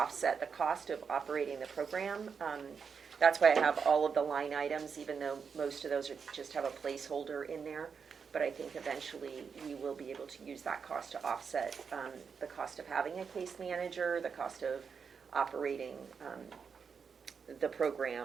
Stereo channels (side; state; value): left; quieter; 6.1 dB